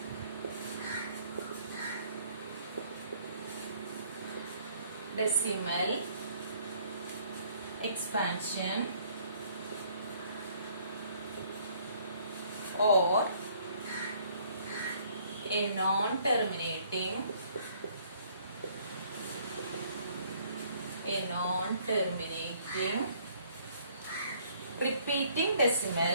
decimal expansion or a non-terminating repeating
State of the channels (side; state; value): both; inverted; correlation -0.62